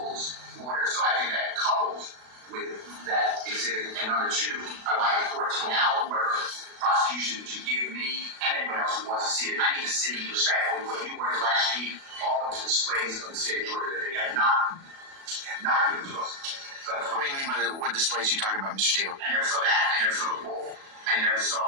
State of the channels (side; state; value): left; late; 36 ms